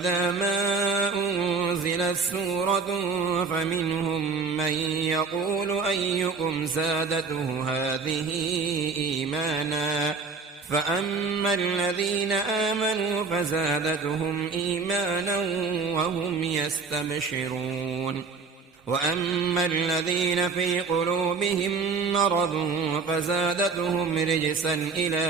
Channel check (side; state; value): left; quieter; 4.8 dB